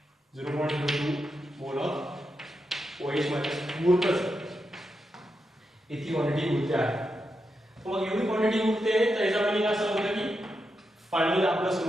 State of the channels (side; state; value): both; normal; correlation 0.86